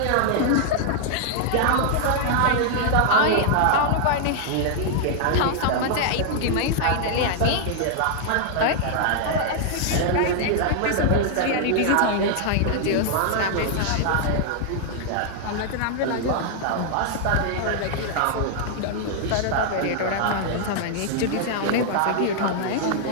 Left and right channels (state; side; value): different; both; correlation -0.01